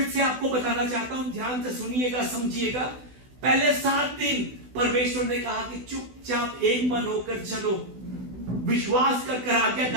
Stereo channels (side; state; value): left; late; 16 ms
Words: से आपको बताना चाहता हूं, ध्यान से सुनिएगा, समझिएगा। पहले 7 दिन परमेश्वर ने कहा कि चुपचाप एक मन होकर चलो, विश्वास कर